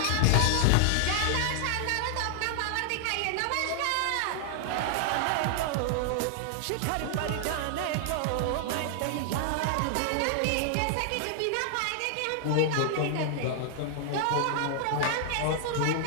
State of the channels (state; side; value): different; both; correlation 0.00